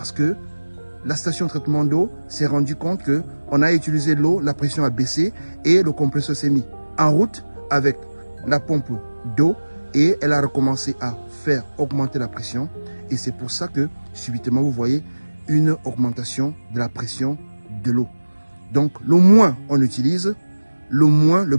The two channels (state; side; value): inverted; both; correlation -1.00